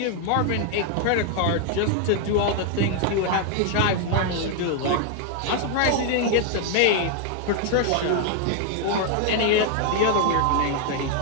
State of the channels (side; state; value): both; different; correlation 0.00